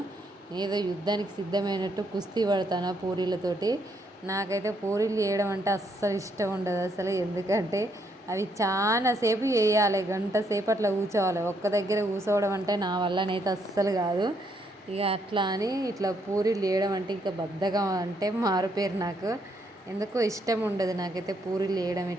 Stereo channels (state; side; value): normal; both; correlation 0.73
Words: ఏదో యుద్ధానికి సిద్ధమైనట్టు కుస్తీ పడతాను పూరీలతోటి. నాకైతే పూరీలు చేయడం అంటే అస్సలు ఇష్టం ఉండదు అసలు. ఎందుకంటే అవి చాలా సేపు వేయాలి, గంట సేపు అట్లా కూర్చోవాలి. ఒక్క దగ్గర కూర్చోవడం అంటే నా వల్లనైతే అస్సలు కాదు. ఇక అట్లా అని ఇట్లా పూరీలు చేయడం అంటే ఇంకా బద్ధకం అంటే మారుపేరు నాకు. ఎందుకో ఇష్టం ఉండదు నాకైతే పూరీలు వేయడం